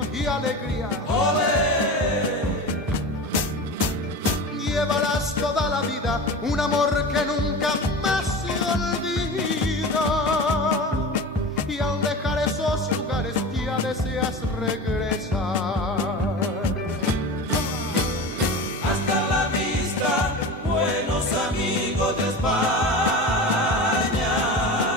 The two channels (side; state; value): both; normal; correlation 0.30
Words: y alegría. ¡Olé! Llevarás toda la vida un amor que nunca más se olvida. Y al dejar esos lugares ya deseas regresar. De España,